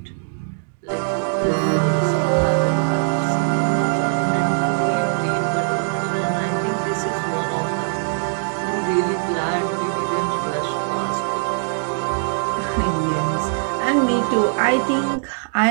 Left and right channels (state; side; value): silent; left; 64 dB below the other